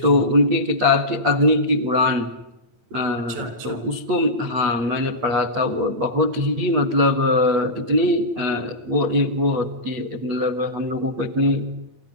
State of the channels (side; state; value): left; late; 8.8 ms